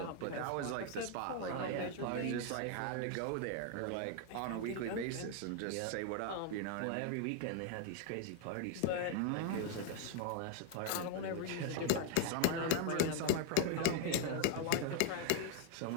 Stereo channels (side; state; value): both; different; correlation 0.00